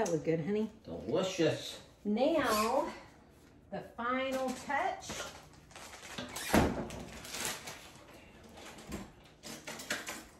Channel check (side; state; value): both; identical; correlation 1.00